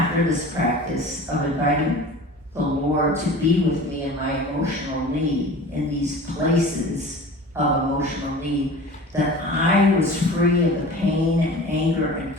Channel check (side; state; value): both; normal; correlation 0.38